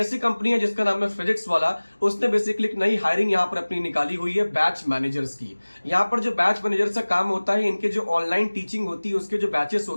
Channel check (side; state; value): both; inverted; correlation -1.00